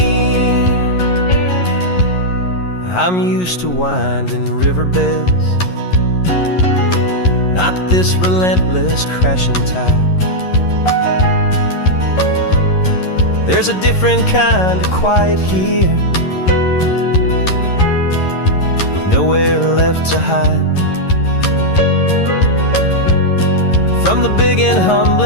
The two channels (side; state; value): right; late; 11 ms